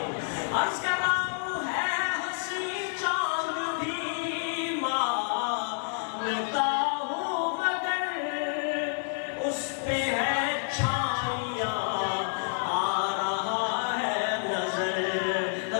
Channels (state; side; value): silent; right; digital silence